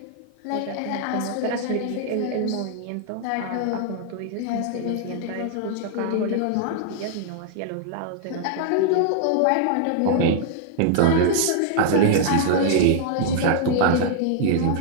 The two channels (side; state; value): both; different; correlation -0.01